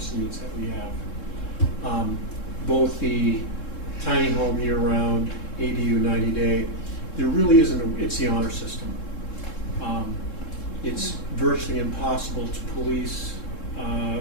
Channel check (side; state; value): right; late; 3.7 ms